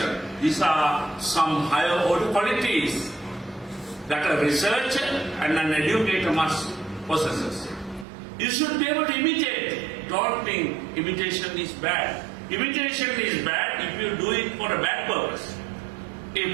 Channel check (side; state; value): left; drops out; at 8.1 s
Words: These are some higher order qualities that a researcher and an educator must possess. You should be able to imitate. Don't think imitation is bad. Imitation is bad if you do it for a bad purpose.